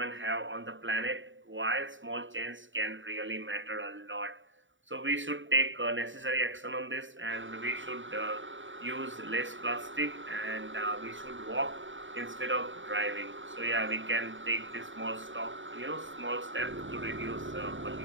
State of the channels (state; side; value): late; left; 0.56 ms